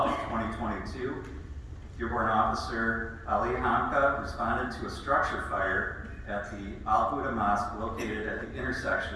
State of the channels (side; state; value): both; identical; correlation 1.00